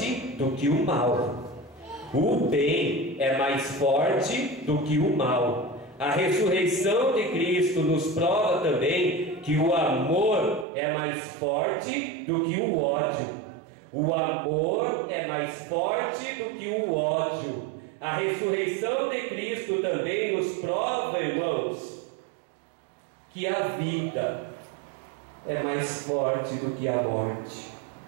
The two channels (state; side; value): drops out; left; at 10.7 s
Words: do que o mal. O bem é mais forte do que o mal. A ressurreição de Cristo nos prova também que o amor é mais forte do que o ódio. O amor é mais forte do que o ódio. A ressurreição de Cristo também nos prova, irmãos, que a vida é mais forte do que a morte.